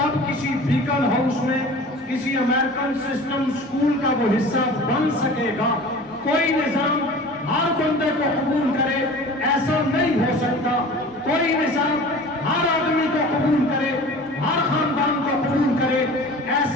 کسی بیکن ہاؤس میں کسی امریکن سسٹم سکول کا وہ حصہ بن سکے گا۔ کوئی نظام ہر بندے کو قبول کرے ایسا نہیں ہو سکتا، کوئی نظام ہر آدمی کو قبول کرے، ہر خاندان کو قبول کرے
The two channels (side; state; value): both; normal; correlation 0.40